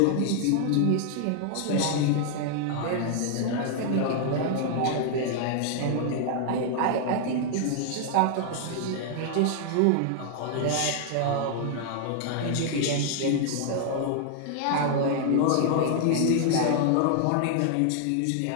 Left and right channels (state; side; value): different; both; correlation 0.00